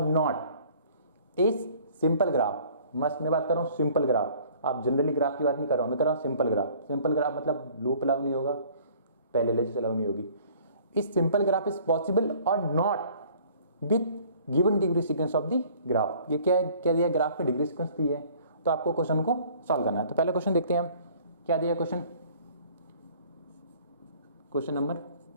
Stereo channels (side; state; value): both; inverted; correlation -0.54